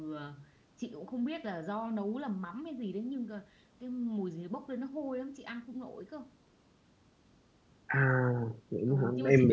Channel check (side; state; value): both; identical; correlation 1.00